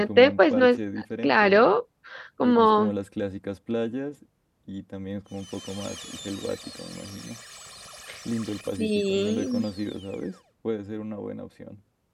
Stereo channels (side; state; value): both; identical; correlation 1.00